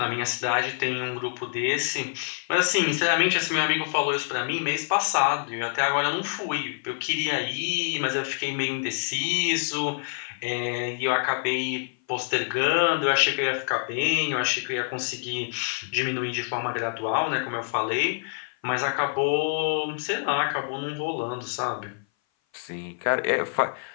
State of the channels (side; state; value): right; silent; 57 dB below the other